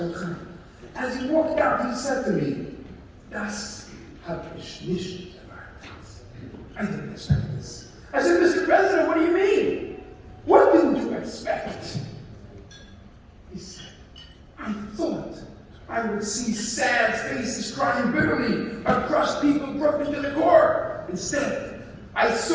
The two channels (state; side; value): identical; both; correlation 1.00